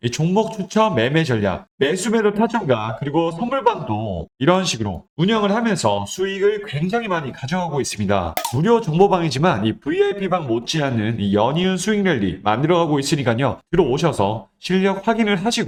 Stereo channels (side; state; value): both; identical; correlation 1.00